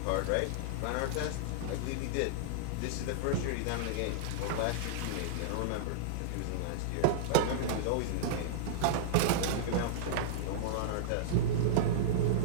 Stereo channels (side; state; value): both; different; correlation -0.02